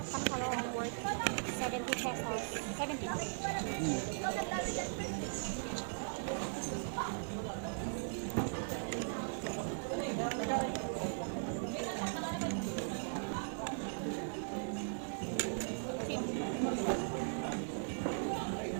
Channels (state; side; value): silent; left; digital silence